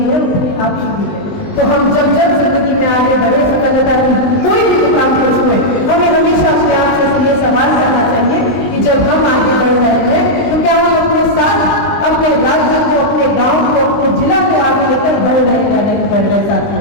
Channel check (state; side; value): late; right; 20 ms